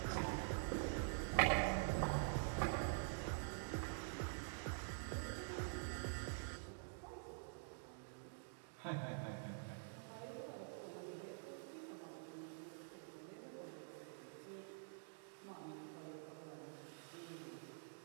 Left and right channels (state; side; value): silent; left; digital silence